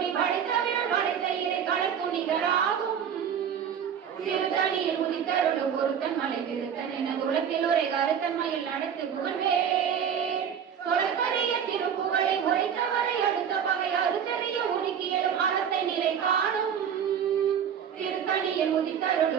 படைத்தவிரல் படைத்த இறை களத்துணிகராகும் திருத்தணியில் உதித்தருளும் ஒருத்தன் மலை திருத்தன் என உலகில் உரை கருத்தன்மையில் நடத்து புகழ்வேலே தொடர்கரிய திருப்புகளை உரைத்தவரை அடுத்த பகை அறுத்தறிய உருக்கியலும் அறத்தை நிலை காணும் திருத்தணியில்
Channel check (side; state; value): left; quieter; 8.2 dB